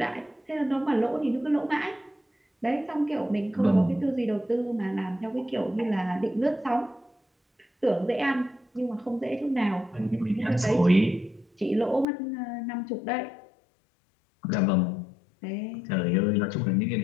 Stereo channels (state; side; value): drops out; right; at 12.1 s